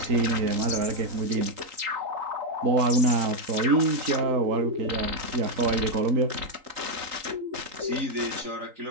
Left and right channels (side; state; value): left; late; 3.8 ms